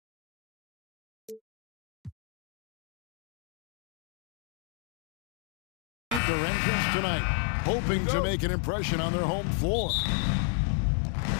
entrance tonight, hoping to make an impression on their home floor.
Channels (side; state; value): right; drops out; at 6.2 s